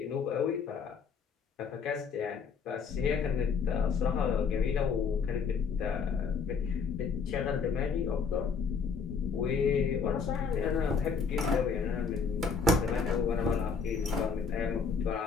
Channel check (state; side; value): quieter; right; 5.6 dB